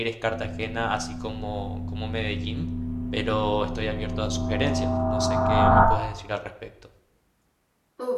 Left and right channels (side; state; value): both; identical; correlation 1.00